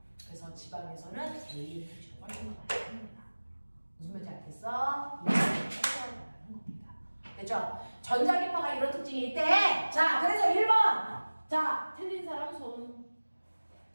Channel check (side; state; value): both; inverted; correlation -1.00